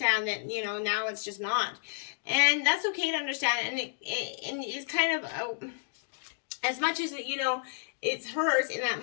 that, now it's just not. And that's okay to understand. And it's kind of, as much as, it hurts in that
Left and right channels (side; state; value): right; silent; digital silence